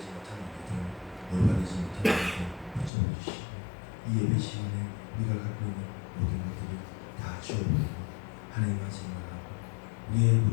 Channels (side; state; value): right; drops out; at 2.9 s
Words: 못한 우리들, 올바르지 못한 우리들 붙잡아 주시고 이 예배 시간에 우리가 갖고 있는 모든 것들을 다 주어버리고 하나님만 생각하고